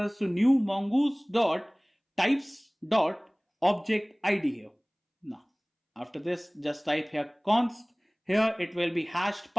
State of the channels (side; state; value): both; identical; correlation 1.00